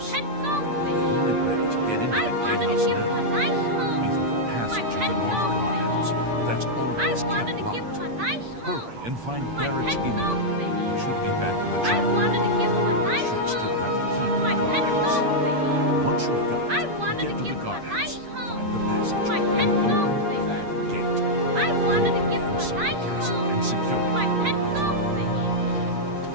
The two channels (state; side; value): late; left; 8.6 ms